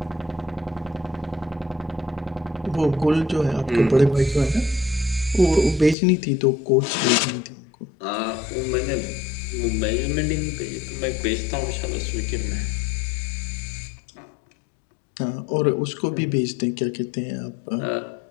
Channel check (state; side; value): drops out; right; at 6.0 s